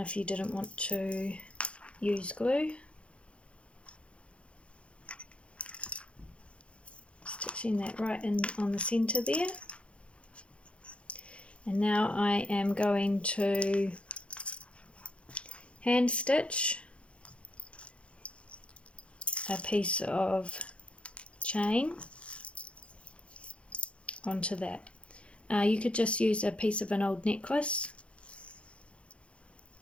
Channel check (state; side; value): late; right; 0.060 ms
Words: you didn't want to use glue. Stitching that right in on the center there. And now I am going to hand stitch a piece of chain onto that. You could just use a piece of an old necklace